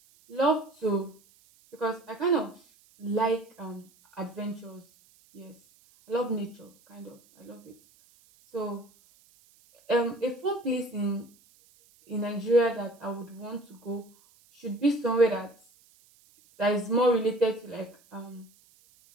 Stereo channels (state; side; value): noise; right; hiss, 29 dB below the sound